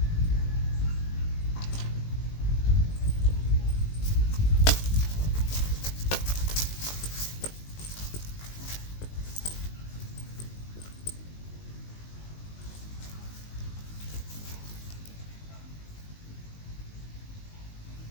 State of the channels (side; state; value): right; late; 19 ms